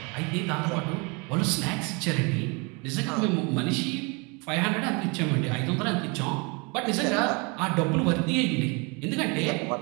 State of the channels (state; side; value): quieter; left; 30.3 dB